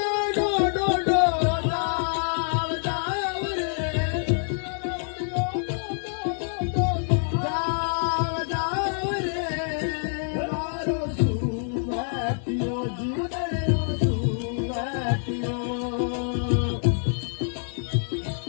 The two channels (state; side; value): silent; right; 59 dB below the other